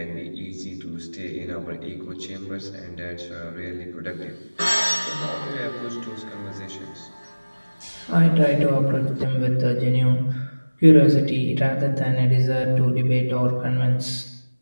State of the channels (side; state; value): both; inverted; correlation -1.00